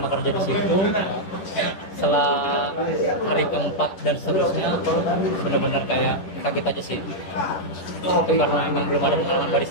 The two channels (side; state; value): right; late; 10 ms